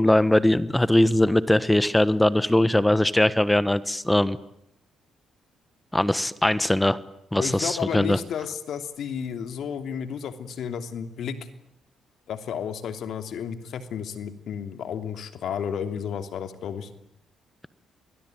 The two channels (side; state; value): both; normal; correlation 0.97